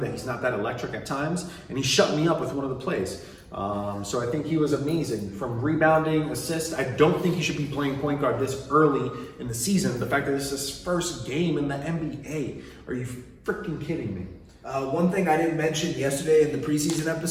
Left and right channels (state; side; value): identical; both; correlation 1.00